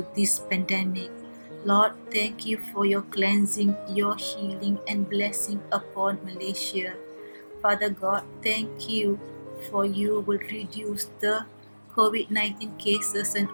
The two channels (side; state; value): both; inverted; correlation -1.00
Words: this pandemic. Lord, thank you for your cleansing, your healing and blessing upon Malaysia. Father God, thank you for you will reduce the COVID-19 cases and